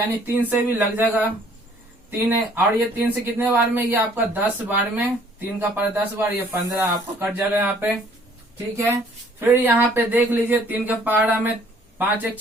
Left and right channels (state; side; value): normal; both; correlation 0.59